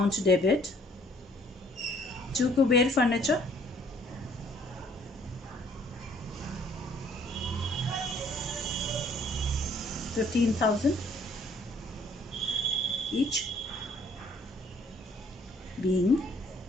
debit to Kuber furniture. $15,000 each being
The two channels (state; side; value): normal; both; correlation 0.61